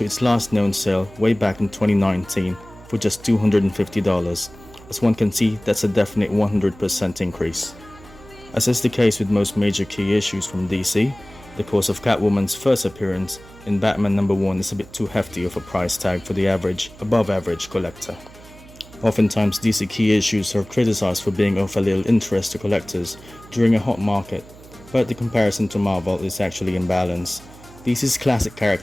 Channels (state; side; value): noise; right; hum, 21 dB below the sound